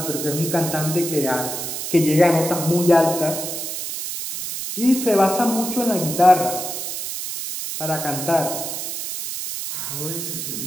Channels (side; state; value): right; noise; hiss, 5 dB below the sound